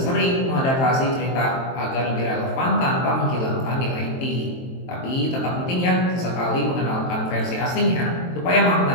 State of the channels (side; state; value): right; late; 23 ms